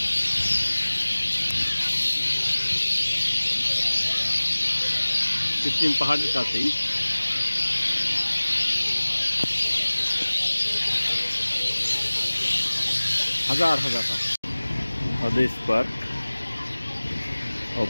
কৃত্রিম পাহাড়ের কাছেই হাজার হাজার পাখি। হাদিস পার্ক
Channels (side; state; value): both; inverted; correlation -1.00